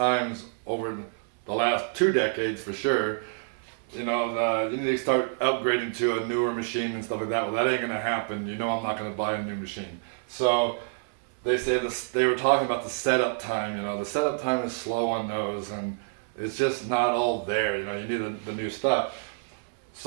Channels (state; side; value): silent; left; 60 dB below the other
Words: over the last 2 decades for sure, you need to start upgrading to a newer machine and stuff like that. Well, that ain't gonna happen. I'm not gonna buy a new machine. So they were talking about the setup time. The setup time is slow on those, and it's just not all there. You need the new stuff.